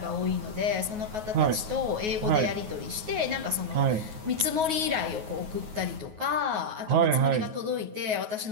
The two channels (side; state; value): left; late; 9.4 ms